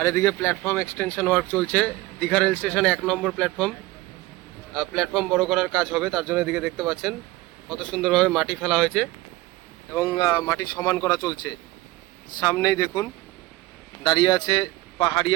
এদিকে প্ল্যাটফর্ম এক্সটেনশন ওয়ার্ক চলছে দীঘা রেল স্টেশনে 1 নম্বর প্ল্যাটফর্ম বড় করার কাজ হবে, তার জন্য এদিকে দেখতে পাচ্ছেন কত সুন্দরভাবে মাটি ফেলা হয়েছে এবং মাটি সমান করা চলছে। সামনেই দেখুন দাঁড়িয়ে আছে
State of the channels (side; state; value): left; quieter; 18.9 dB